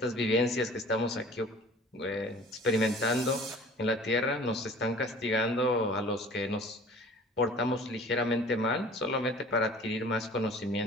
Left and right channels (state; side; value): normal; both; correlation 0.46